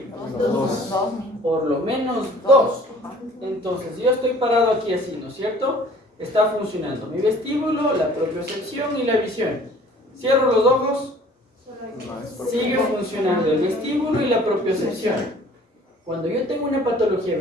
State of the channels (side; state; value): both; normal; correlation 0.51